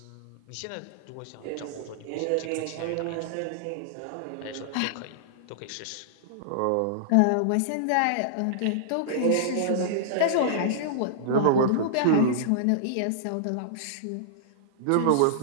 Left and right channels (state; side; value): different; both; correlation -0.02